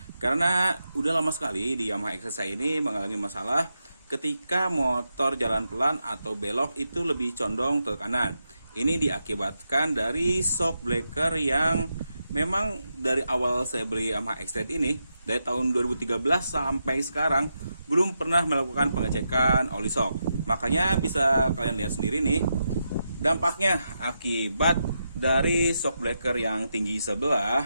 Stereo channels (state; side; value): inverted; both; correlation -0.86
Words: Karena udah lama sekali di Yamaha XR saya ini mengalami masalah ketika motor jalan pelan atau belok itu lebih condong ke kanan. Ini diakibatkan dari shock breaker yang memang dari awal saya beli Yamaha XR ini, dari tahun 2013 sampai sekarang belum pernah melakukan pengecekan oli shock. Makanya bisa kalian lihat sendiri nih dampaknya akibat dari shock breaker yang tinggi